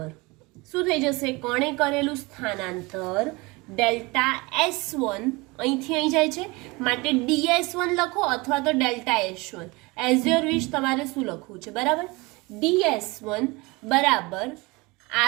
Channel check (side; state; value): left; quieter; 24.6 dB